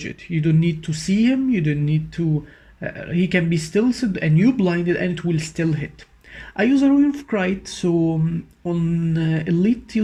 it. You don't need to see him, you don't need to, he can be stealthed and you blinded and it will still hit. I use a royal of Kite, so on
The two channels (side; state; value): both; identical; correlation 1.00